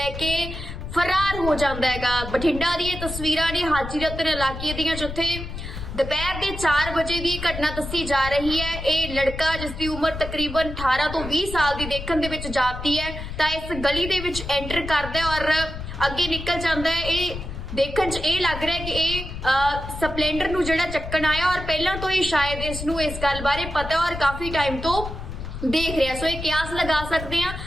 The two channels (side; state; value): left; noise; rumble, 8 dB below the sound